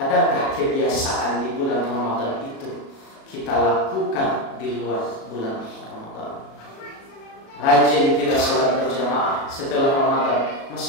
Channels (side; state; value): right; late; 37 ms